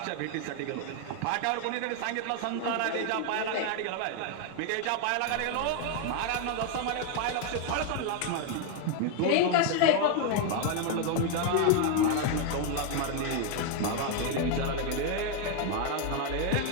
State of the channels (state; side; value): different; both; correlation 0.01